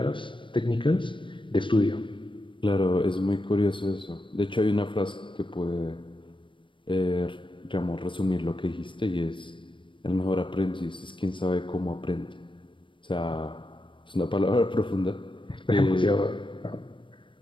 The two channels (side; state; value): right; late; 0.24 ms